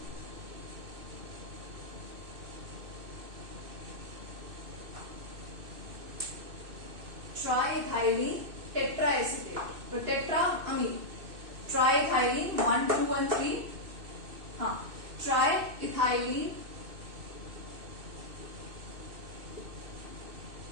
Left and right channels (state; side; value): late; left; 2.6 ms